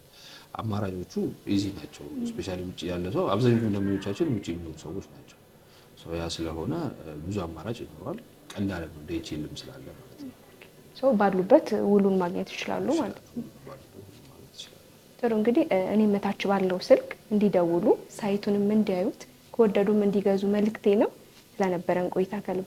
አማራጮቹ ኢዚ ናቸው። ስፔሻሊ ውጭ ያለ ሰው አብዛኛው ደንበኞቻችን ውጭ የሚኖሩ ሰዎች ናቸው። ያ ስለሆነ ብዙ አማራጭ ይኖራል። ቀላል ነው ዲኤችኤልም ስላለ ማለት ነው። ሰው ባሉበት ውሉን ማግኘት ይችላሉ ማለት ነው። ጥሩ እንግዲህ እኔ መታች ባለው ስልክ እንዲደውሉ ሳይቱንም እንዲያዩት ከወደዱም እንዲገዙ መልእክቴ ነው። ስለነበረን ቆይታ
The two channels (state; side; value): identical; both; correlation 1.00